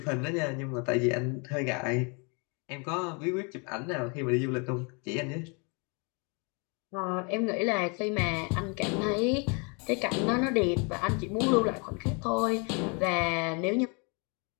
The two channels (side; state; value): right; quieter; 33.4 dB